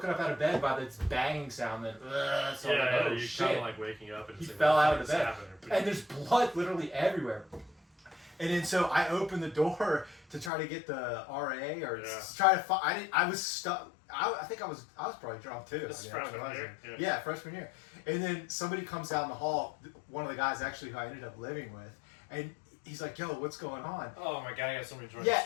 up out of bed by this banging sound. That so yeah, like, oh you're shit! kind of like waking up and he fell out of the bed, and there's blood literally everywhere. And then so I opened the door to try to get the RA or to try to find. I was stuck. I think I was probably drunk too. This is freshman year? Yeah, freshman year. And then somebody comes down the hall, one of the guys actually who I ended up living with, and he's like, yo, what's going on? Oh my God, I got so many drunk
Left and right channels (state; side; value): drops out; right; at 10.5 s